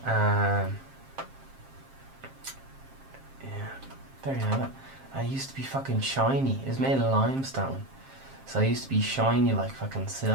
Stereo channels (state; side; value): late; left; 7.5 ms